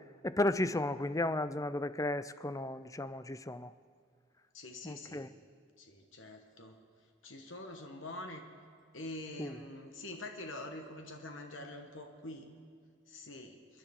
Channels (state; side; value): normal; both; correlation 0.62